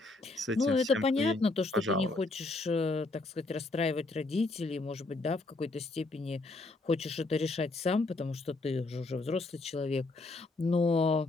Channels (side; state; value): right; quieter; 3.2 dB